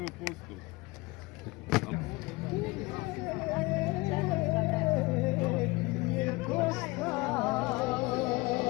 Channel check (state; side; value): quieter; right; 23.1 dB